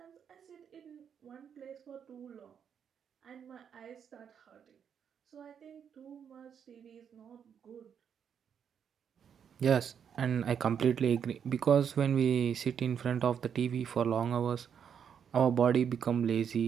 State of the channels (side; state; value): left; quieter; 7.8 dB